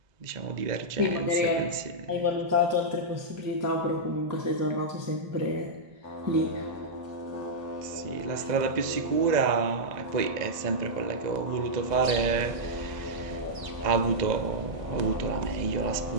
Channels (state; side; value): late; left; 2.0 ms